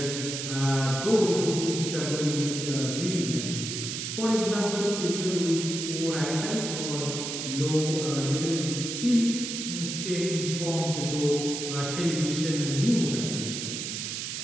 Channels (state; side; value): noise; right; hiss, 4 dB below the sound